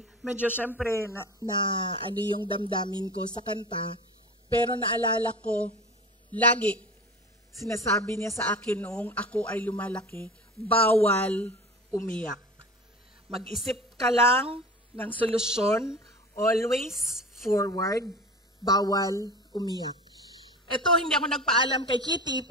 medyo syempre ano yung damdamin ko sa kanta, pero naalala ko lagi sinasabi niya sa akin noong ako ay lumalaki, bawal umiyak. Mag-isip ka lang ng solusyon, always forward, bawal umiyak. Ito, hindi ako nagpaalam kay Kitty,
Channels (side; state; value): both; normal; correlation 0.34